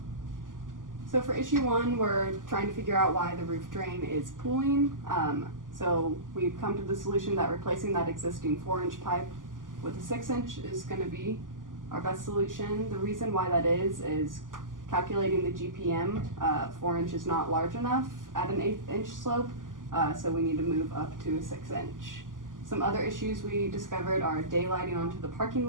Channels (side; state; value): left; late; 0.88 ms